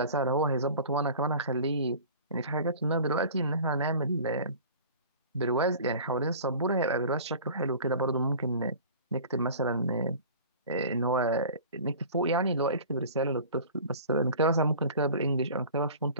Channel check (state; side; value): inverted; both; correlation -0.42